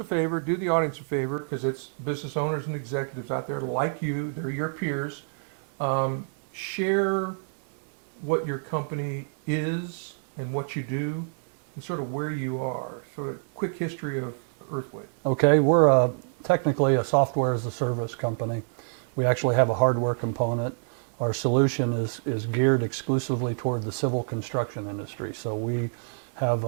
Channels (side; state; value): left; silent; digital silence